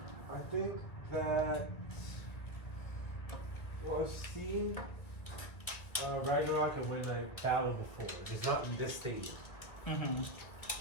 I think that well, I've seen Ragnarok and Midnight battle before, just not in this stadium.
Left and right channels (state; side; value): late; right; 1.6 ms